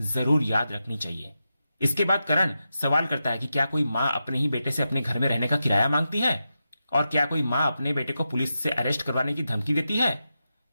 जरूर याद रखनी चाहिए। इसके बाद करण सवाल करता है कि क्या कोई मां अपने ही बेटे से अपने घर में रहने का किराया मांगती है, और क्या कोई मां अपने बेटे को पुलिस से अरेस्ट करवाने की धमकी देती है।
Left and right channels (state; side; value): inverted; both; correlation -0.89